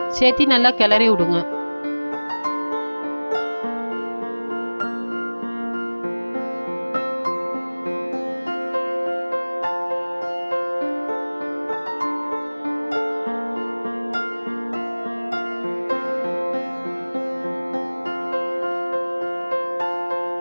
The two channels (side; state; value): both; inverted; correlation -1.00